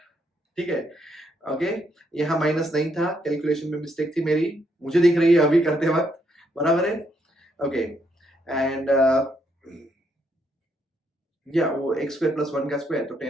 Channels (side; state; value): both; normal; correlation 0.75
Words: ठीक है, ओके। यहाँ माइनस नहीं था, कैलकुलेशन में मिस्टेक थी मेरी, मुझे दिख रही है अभी करते वक्त, बराबर है, ओके। एंड या वो x² + 1 का स्क्वायर, तो